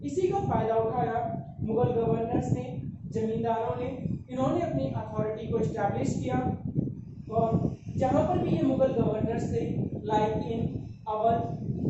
इसी का फायदा उठाया मुगल गवर्नर्स ने, जमींदारों ने। इन्होंने अपनी अथॉरिटी को इस्टेब्लिश किया, और जहां पर भी ये मुगल गवर्नर्स थे, like in Awadh,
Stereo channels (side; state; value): both; identical; correlation 1.00